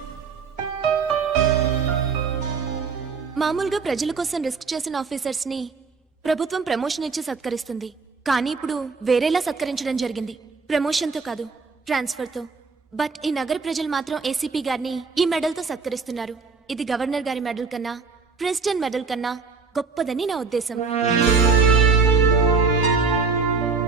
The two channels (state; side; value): quieter; left; 4.8 dB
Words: మామూలుగా ప్రజల కోసం రిస్క్ చేసిన ఆఫీసర్స్ ని ప్రభుత్వం ప్రమోషన్ ఇచ్చి సత్కరిస్తుంది. కానీ ఇప్పుడు వేరేలా సత్కరించడం జరిగింది. ప్రమోషన్ తో కాదు, ట్రాన్స్ఫర్ తో. బట్ ఈ నగర ప్రజలు మాత్రం ఏసీపీ గారిని ఈ మెడల్ తో సత్కరిస్తున్నారు. ఇది గవర్నర్ గారి మెడల్ కన్నా, ప్రెసిడెంట్ మెడల్ కన్నా గొప్పదని నా ఉద్దేశం.